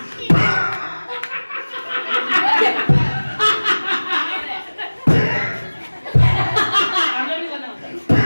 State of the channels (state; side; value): inverted; both; correlation -1.00